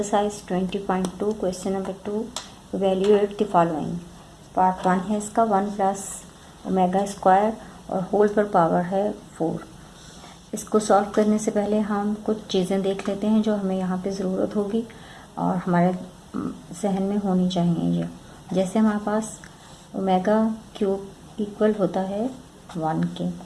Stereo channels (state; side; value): identical; both; correlation 1.00